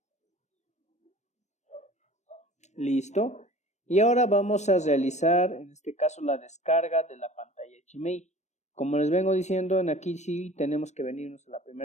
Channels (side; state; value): right; late; 0.34 ms